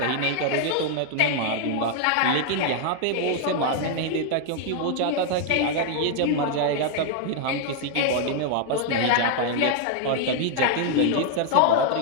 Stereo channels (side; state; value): both; different; correlation 0.00